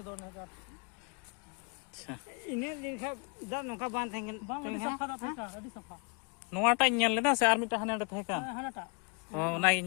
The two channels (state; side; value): quieter; right; 33.8 dB